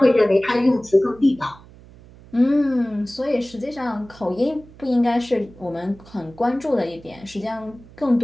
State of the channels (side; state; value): right; noise; hum, 22 dB below the sound